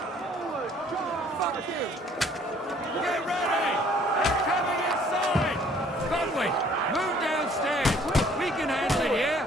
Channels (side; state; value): both; normal; correlation 0.58